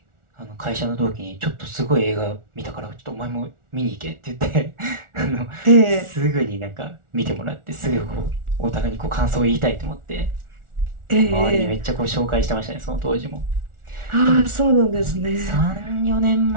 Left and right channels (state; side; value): late; left; 1.4 ms